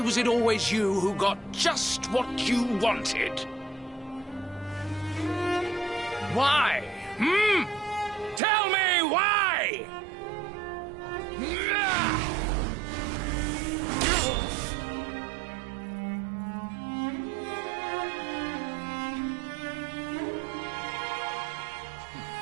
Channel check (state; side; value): drops out; left; at 8.4 s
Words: it always you who got just what you wanted? Why? Tell me why!